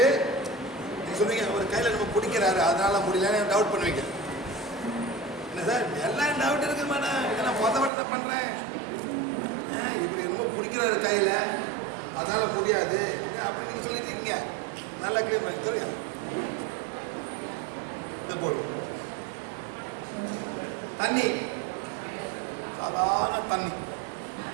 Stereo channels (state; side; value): drops out; left; at 7.9 s